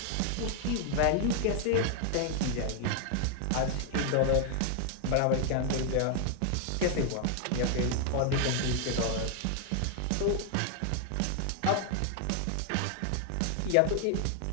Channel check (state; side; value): different; both; correlation 0.00